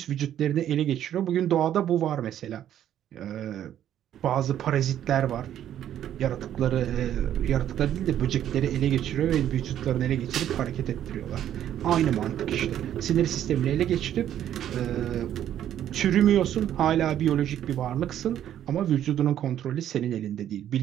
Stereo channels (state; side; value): quieter; left; 10.9 dB